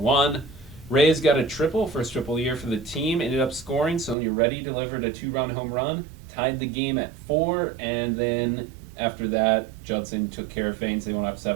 Reyes got a triple, first triple year for the team, ended up scoring. Sonia Reddy delivered a 2-run home run, tied the game at 4, and then after that, Judson took care of things. They went up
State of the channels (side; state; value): left; drops out; at 4.2 s